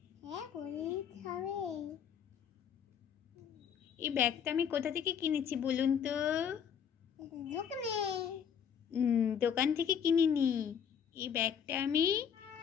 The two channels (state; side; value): quieter; right; 7.9 dB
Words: হ্যাঁ করে দিতে হবে। এই ব্যাগটা আমি কোথা থেকে কিনেছি বলুন তো? দোকানে। দোকান থেকে কিনিনি, এই ব্যাগটা আমি